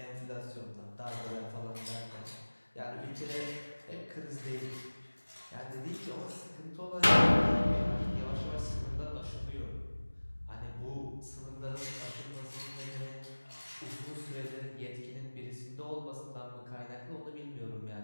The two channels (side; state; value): both; inverted; correlation -1.00